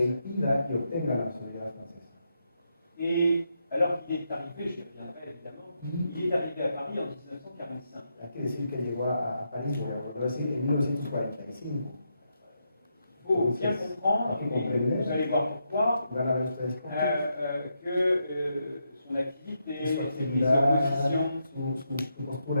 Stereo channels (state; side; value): inverted; both; correlation -0.82